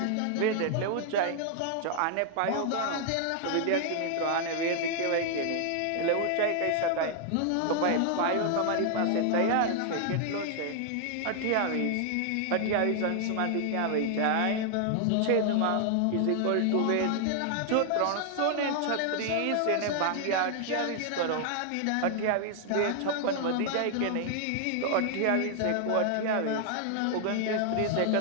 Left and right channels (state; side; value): different; both; correlation 0.00